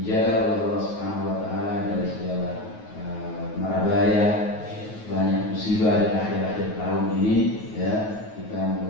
oleh Allah Subhanahu wa taala dari segala mara bahaya, banyak musibah di akhir-akhir tahun ini ya. Kita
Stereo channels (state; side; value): late; right; 9.4 ms